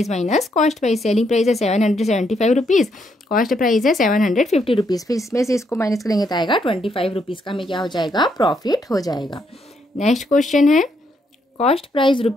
minus cost price. Selling price है 775 रुपीज़, कॉस्ट प्राइस है 750 रुपीज़। फिर इसमें से इसको माइनस करेंगे तो आएगा 25 रुपीज़ का हमें क्या हो जाएगा? प्रॉफिट हो जाएगा। नेक्स्ट क्वेश्चन है cost price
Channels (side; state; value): both; normal; correlation 0.75